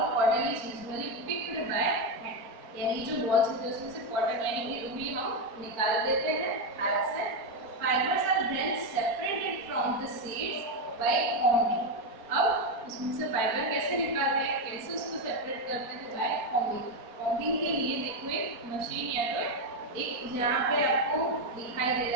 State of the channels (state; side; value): late; left; 4.3 ms